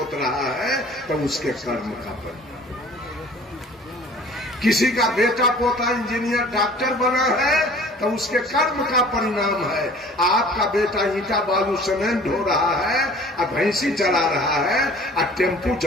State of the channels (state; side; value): normal; both; correlation 0.48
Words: रहा है तो उसके कर्म का परिणाम। किसी का बेटा पोता इंजीनियर डॉक्टर बना है तो उसके कर्म का परिणाम है। आपका बेटा ईंटा बालू सीमेंट ढो रहा है और भैंसी चला रहा है और टेम्पू